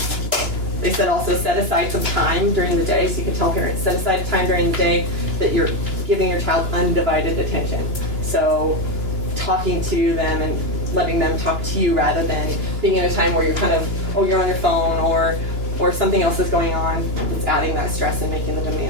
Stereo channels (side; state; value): left; late; 2.9 ms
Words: They said also set aside some time during the day, so you can tell parents, set aside time during the day that you're giving your child undivided attention. So talking to them and letting them talk to you rather than being in a time where you're kind of, you're on your phone or something else is going on. It's adding that stress and making the